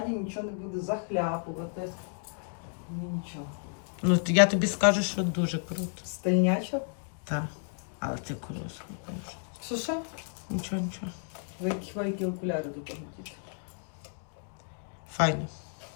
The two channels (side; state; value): right; silent; 57 dB below the other